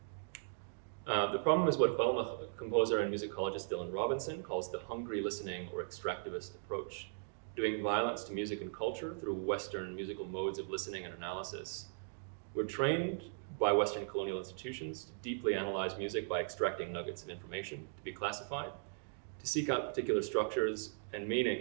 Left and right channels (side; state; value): left; silent; digital silence